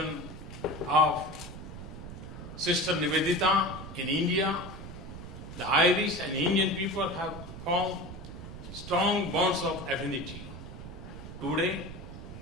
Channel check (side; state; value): right; noise; rumble, 11 dB below the sound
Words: of Sister Nivedita in India, the Irish and Indian people have formed strong bonds of affinity. Today,